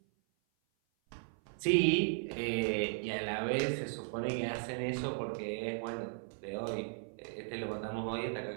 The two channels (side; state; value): left; silent; 54 dB below the other